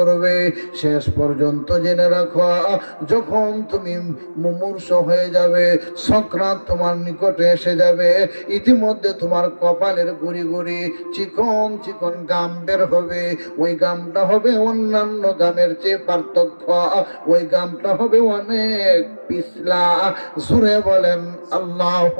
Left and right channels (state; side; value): inverted; both; correlation -1.00